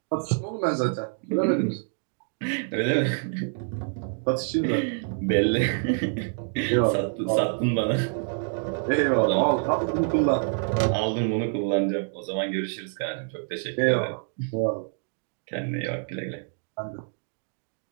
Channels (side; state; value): left; silent; 57 dB below the other